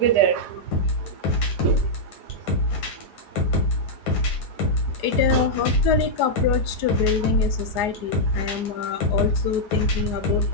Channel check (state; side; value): late; right; 4.9 ms